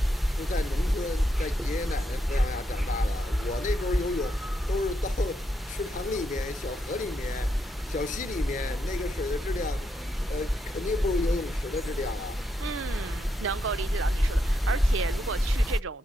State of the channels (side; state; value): both; normal; correlation 0.81